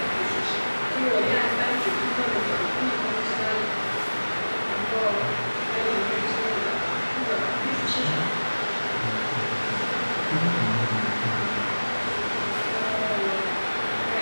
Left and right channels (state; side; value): inverted; both; correlation -1.00